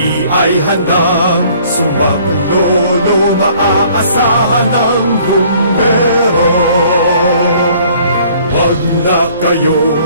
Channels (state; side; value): inverted; both; correlation -0.58